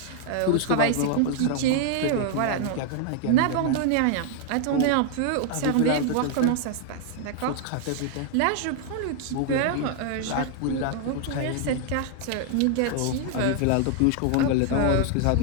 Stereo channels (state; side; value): different; both; correlation 0.00